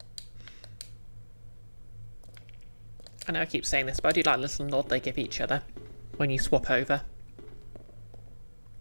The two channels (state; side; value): inverted; both; correlation -1.00